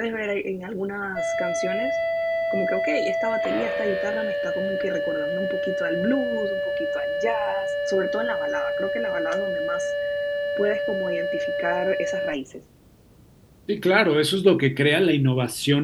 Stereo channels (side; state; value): both; identical; correlation 1.00